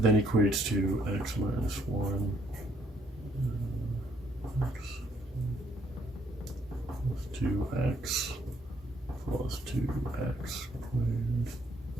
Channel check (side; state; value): both; normal; correlation 0.68